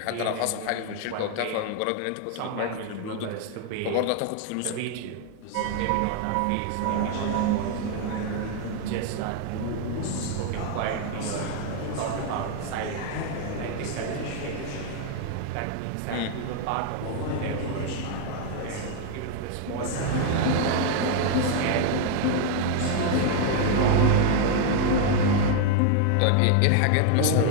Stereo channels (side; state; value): both; different; correlation 0.00